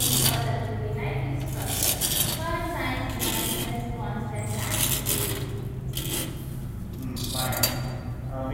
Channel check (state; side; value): identical; both; correlation 1.00